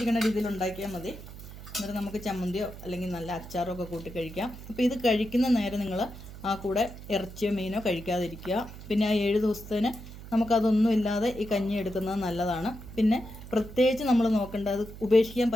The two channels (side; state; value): right; noise; hum, 14 dB below the sound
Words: രീതിയിൽ ഉണ്ടാക്കിയാൽ മതി. എന്നിട്ട് നമുക്ക് ചമ്മന്തിയോ അല്ലെങ്കിൽ നല്ല അച്ചാറോ ഒക്കെ കൂട്ടി കഴിക്കാം. അപ്പോൾ ഇത് കഴിക്കുന്ന നേരം നിങ്ങൾ ആ കൂടെ ഇറച്ചിയോ മീനോ കഴിക്കാതിരിക്കുക. പിന്നെ ആ 7 ദിവസത്തിന് നമുക്കതൊന്നും ഇല്ലാതെ ഈ കഞ്ഞി എടുക്കുന്നത് നല്ലതാണ്. പിന്നെ പ്രത്യേകിച്ച് നമ്മൾ നോക്കേണ്ടത് ഉപേക്ഷിക്കാൻ